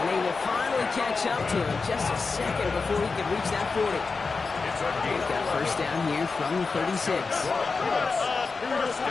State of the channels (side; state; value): right; quieter; 4.4 dB